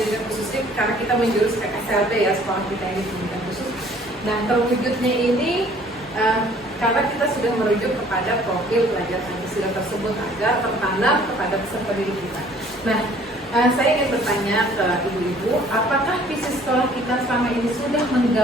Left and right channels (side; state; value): both; normal; correlation 0.55